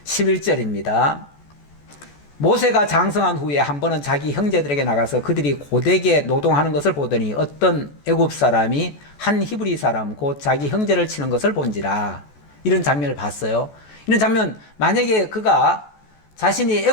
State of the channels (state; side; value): late; right; 14 ms